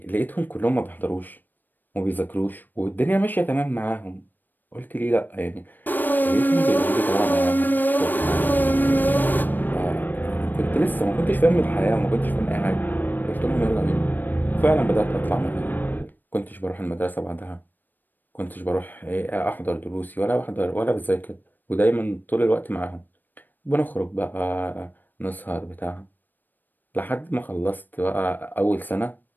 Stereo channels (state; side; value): late; right; 0.091 ms